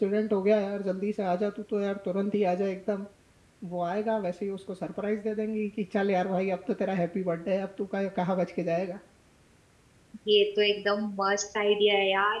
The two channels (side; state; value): both; identical; correlation 1.00